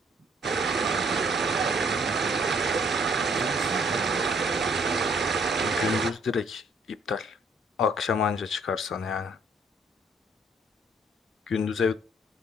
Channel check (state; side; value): normal; both; correlation 0.64